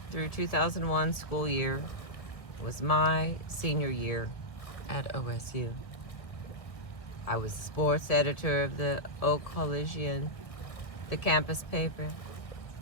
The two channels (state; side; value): late; right; 1.7 ms